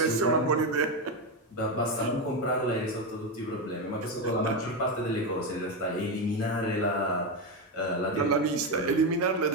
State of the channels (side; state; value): both; normal; correlation 0.11